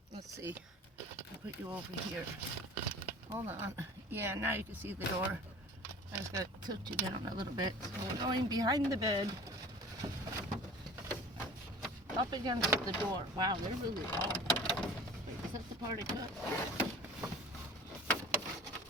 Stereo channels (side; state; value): both; normal; correlation 0.41